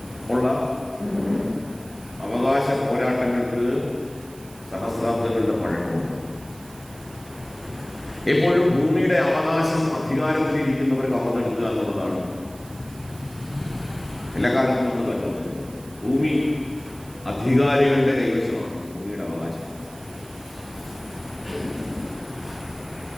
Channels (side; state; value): right; noise; hiss, 22 dB below the sound